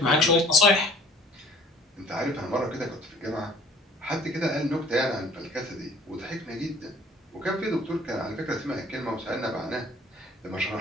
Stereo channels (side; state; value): both; normal; correlation 0.52